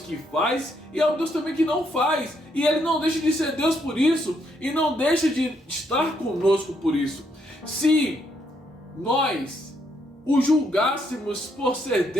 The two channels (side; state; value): both; normal; correlation 0.74